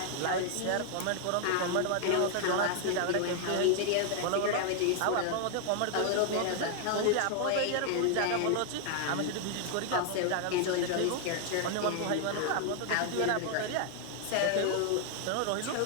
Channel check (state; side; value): different; both; correlation 0.00